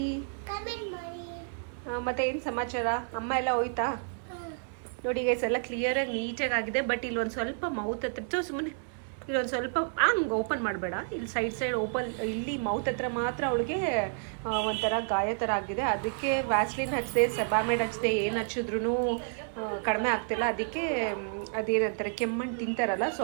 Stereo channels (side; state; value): left; silent; digital silence